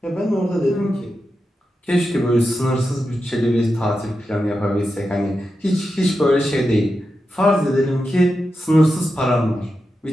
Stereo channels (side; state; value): both; normal; correlation 0.89